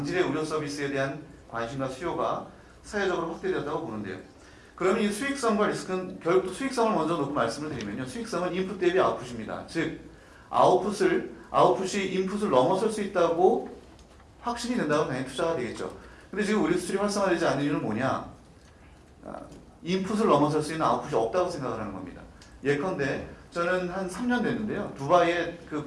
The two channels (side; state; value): both; identical; correlation 1.00